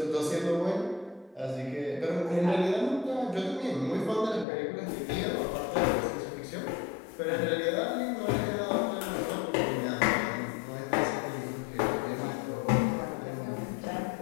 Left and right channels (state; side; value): drops out; right; at 4.5 s